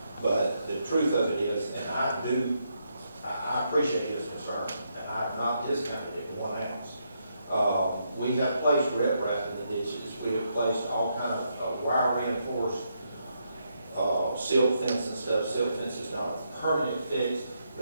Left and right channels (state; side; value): inverted; both; correlation -0.79